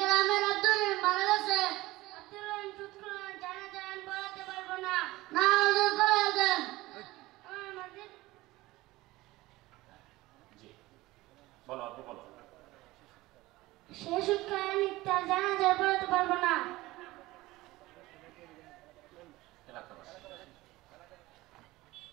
গ্রামের আব্দুর রহিম মারা গেছে। আব্দুর রহিম সুৎখোর, জানাজা আমি পড়াতে পারবো না। না হুজুর পড়ায় দেন। আমার মসজিদ জি বলো, আপনি বলো। সে সুৎখোর, আমি তার জানাজা পড়াতে পারবো না।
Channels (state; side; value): quieter; left; 18.9 dB